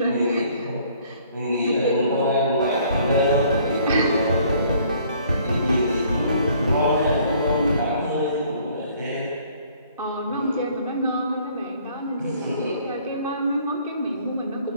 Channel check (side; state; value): both; inverted; correlation -0.59